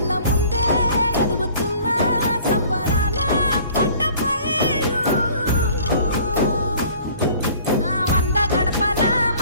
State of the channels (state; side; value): inverted; both; correlation -0.51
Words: ముందే ఎదుగుతున్న సంబరాల పంట పైరు వంద గడపల